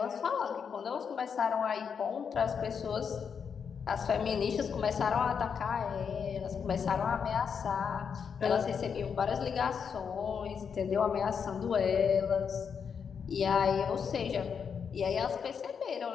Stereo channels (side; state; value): right; quieter; 6.7 dB